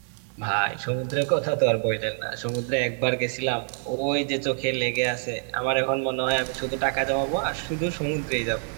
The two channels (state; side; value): silent; left; 61 dB below the other